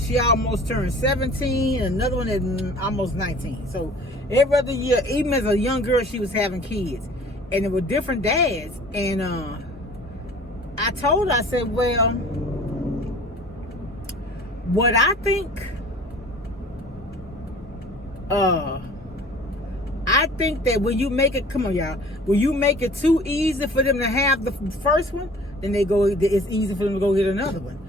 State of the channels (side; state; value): both; normal; correlation 0.47